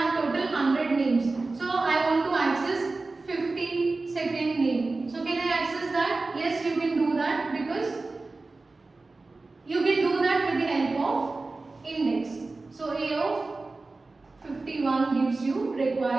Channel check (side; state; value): left; quieter; 3.5 dB